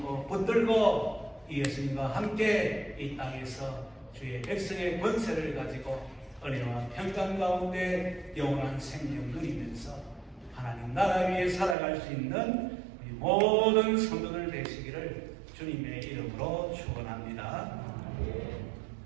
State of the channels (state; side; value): drops out; left; at 11.8 s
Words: 붙들고 예수님과 함께 이 땅에서 주의 백성의 권세를 가지고 은혜와 평강 가운데 영원한 생명 누리면서 하나님 나라 위에 살아갈 수 있는 우리 모든 성도들 되시기를 주님의 이름으로 축원합니다.